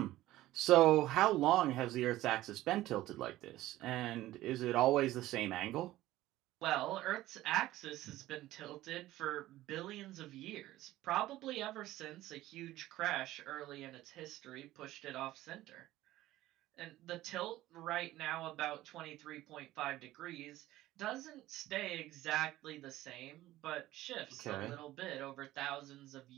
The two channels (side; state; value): left; quieter; 15.7 dB